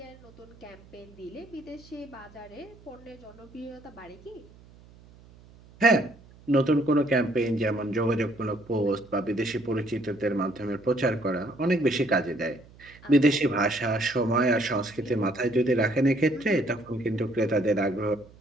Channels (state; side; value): noise; right; hum, 24 dB below the sound